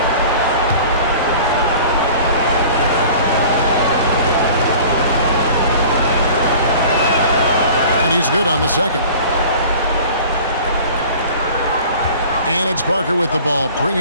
And he's good on the second. And it's Parker with the ball,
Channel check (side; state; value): both; inverted; correlation -0.44